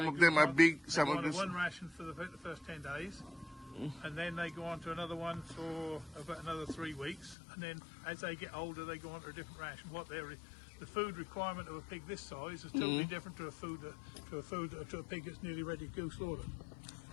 of them are big, they some go of on them. to one ration for the first 10 days, and then they go on to another one for about another 3 weeks, and then as they get older, they go on to a different ration. The food requirement of a pig this size is totally different to a pig that's nearly ready to go slaughtered.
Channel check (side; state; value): right; drops out; at 7.4 s